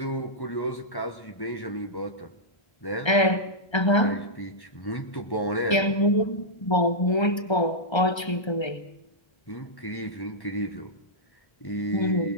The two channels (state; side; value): late; right; 1.3 ms